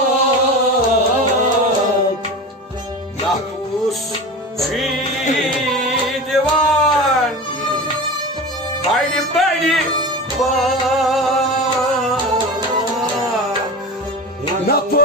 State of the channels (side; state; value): both; normal; correlation 0.29